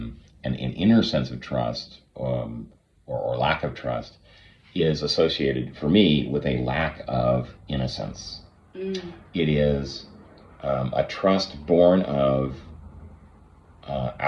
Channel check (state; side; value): identical; both; correlation 1.00